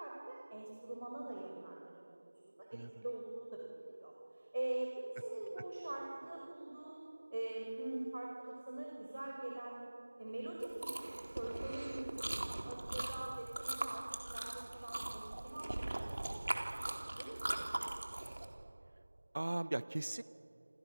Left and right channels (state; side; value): inverted; both; correlation -1.00